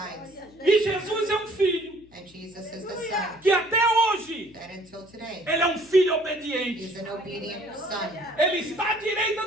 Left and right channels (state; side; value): noise; left; hum, 28 dB below the sound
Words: E Jesus é um filho And Jesus is the Son que até hoje that until today, ele é um filho obediente. he's an obedient Son. Ele está à